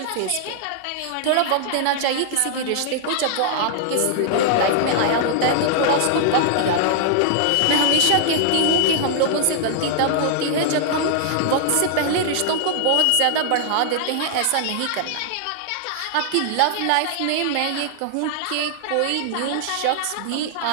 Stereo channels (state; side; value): different; both; correlation -0.01